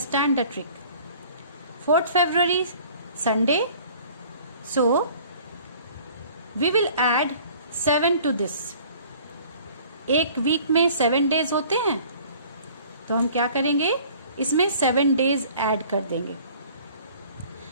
the trick. 4th February Sunday. So we will add 7 to this. एक वीक में 7 days होते हैं, तो हम क्या करेंगे? इसमें 7 डेज ऐड कर देंगे.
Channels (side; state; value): both; inverted; correlation -0.51